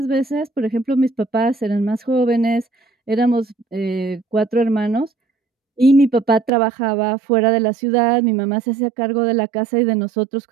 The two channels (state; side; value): drops out; left; at 6.5 s